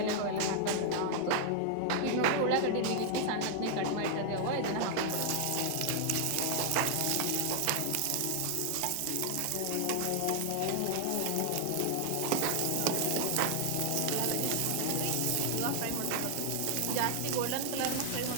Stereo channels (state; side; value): different; both; correlation 0.00